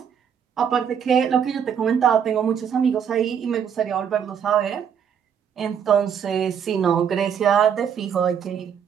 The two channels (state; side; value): quieter; left; 7.9 dB